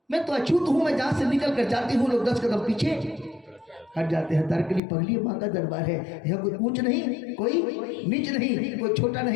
मैं तो अछूत हूं। मैं जहां से निकल कर जाती हूँ लोग 10 कदम पीछे हट जाते हैं। तारकली पगली मां का दरबार है। यहाँ कोई ऊंच नहीं, कोई नीच नहीं, कोई छोटा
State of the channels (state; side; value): drops out; right; at 4.8 s